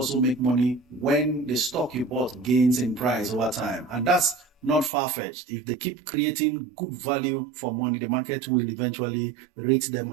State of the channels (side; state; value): left; drops out; at 4.9 s